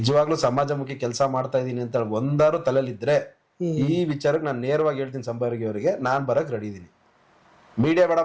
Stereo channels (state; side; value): identical; both; correlation 1.00